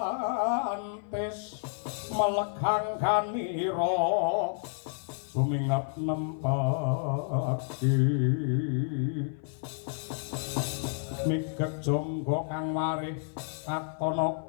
melegang kanira sumingap nempaki migek jonggo kang marih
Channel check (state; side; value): silent; right; 55 dB below the other